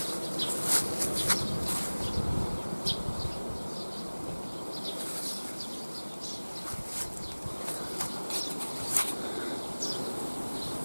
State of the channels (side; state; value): both; inverted; correlation -1.00